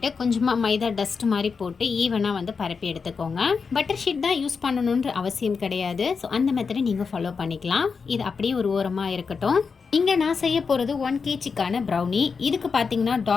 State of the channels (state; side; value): quieter; right; 5.3 dB